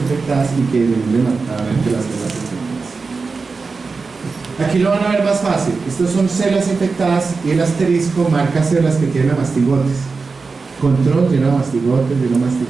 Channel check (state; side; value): quieter; left; 4.4 dB